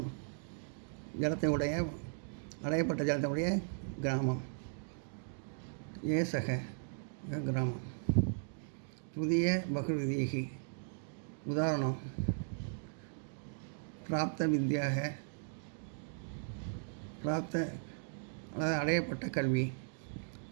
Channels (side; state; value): left; silent; digital silence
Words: ஜலத்தை உடைய அடையப்பட்ட ஜலத்தை உடைய கிராமம் ஏ சக கிராமம். புதிய பகுவிதீகி உதாரணம் பிராப்த வித்யாக பிராப்த அதாவது அடையப்பட்ட கல்வி.